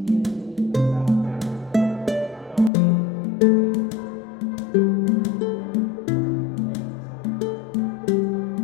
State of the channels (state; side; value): drops out; right; at 2.7 s